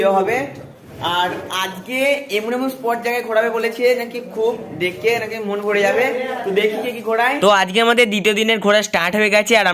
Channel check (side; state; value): both; identical; correlation 1.00